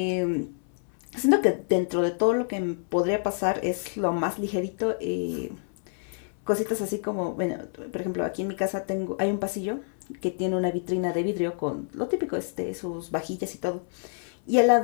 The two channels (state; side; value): silent; right; 60 dB below the other